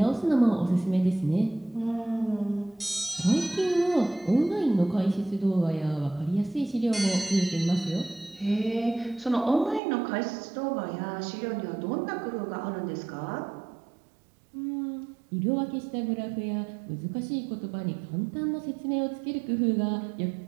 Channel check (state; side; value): drops out; left; at 9.8 s